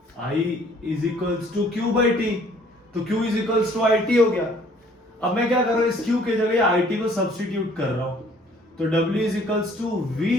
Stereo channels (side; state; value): both; normal; correlation 0.58